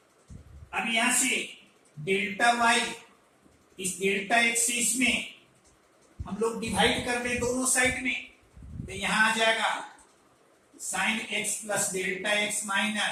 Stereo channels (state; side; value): identical; both; correlation 1.00